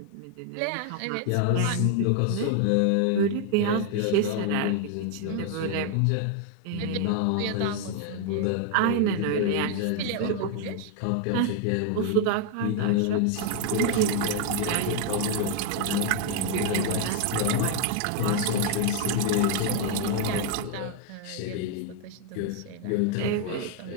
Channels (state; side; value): different; both; correlation 0.00